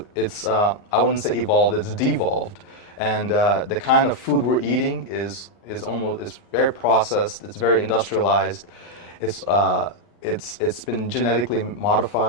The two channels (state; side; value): late; right; 39 ms